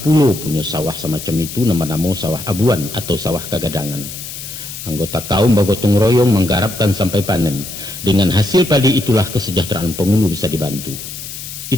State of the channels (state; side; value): noise; left; hiss, 10 dB below the sound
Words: pulau punya sawah semacam itu, nama-nama sawah abuan atau sawah kagadangan. Anggota kaum bergotong royong menggarapkan sampai panen. Dengan hasil padi itulah kesejahteraan penghulu bisa dibantu.